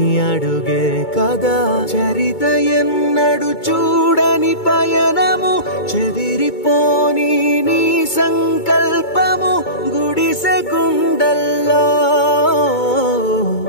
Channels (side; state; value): right; late; 2.2 ms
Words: అడుగే కదా చరిత ఎన్నడు చూడని పయనము చెదిరిపోని నీ సంకల్పము గుడిసె గుండల్లో